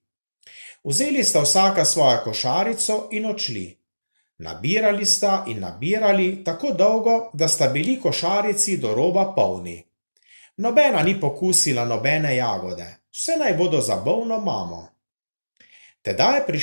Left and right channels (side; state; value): both; inverted; correlation -1.00